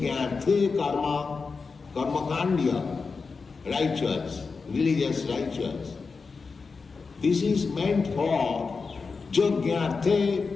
karma, karmakandya, righteous, religious righteous. This is meant for yajnarthe,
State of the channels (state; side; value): quieter; right; 4.7 dB